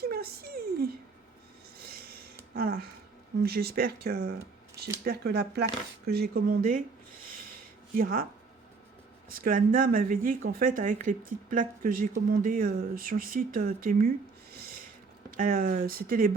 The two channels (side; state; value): left; quieter; 4.4 dB